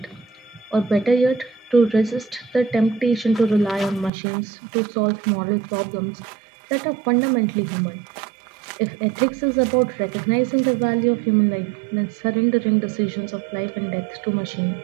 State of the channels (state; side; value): drops out; left; at 4.1 s